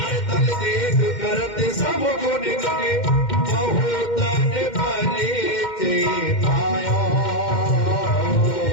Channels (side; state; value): right; late; 2.1 ms